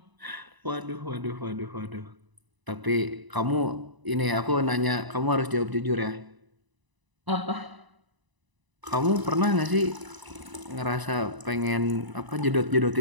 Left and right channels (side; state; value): left; late; 1.0 ms